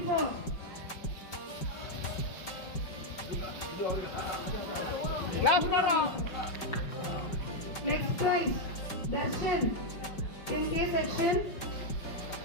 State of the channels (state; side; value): late; right; 5.3 ms